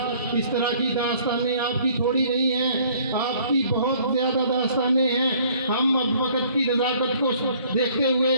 इस तरह की दास्तानें आपकी थोड़ी नहीं हैं, आपकी बहुत ज़्यादा दास्तानें हैं। हम अब वक्त की नज़ाकत को देखते हुए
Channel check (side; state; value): both; inverted; correlation -0.58